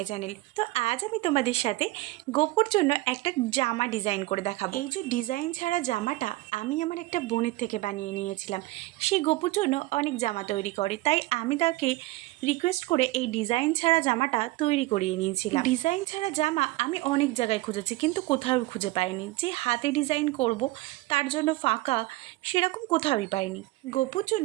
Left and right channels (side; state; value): left; quieter; 19.4 dB